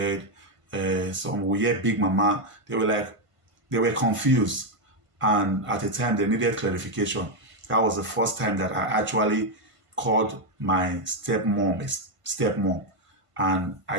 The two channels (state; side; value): late; left; 1.5 ms